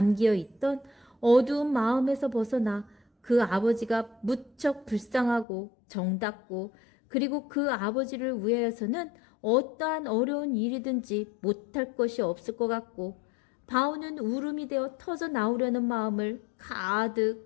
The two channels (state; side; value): drops out; right; at 5.5 s